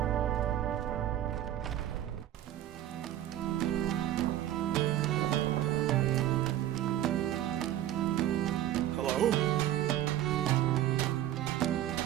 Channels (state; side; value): quieter; left; 12.5 dB